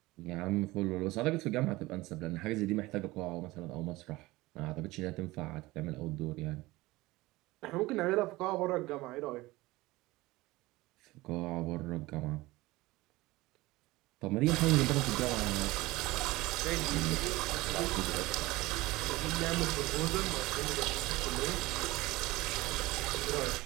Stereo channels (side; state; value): left; quieter; 19.9 dB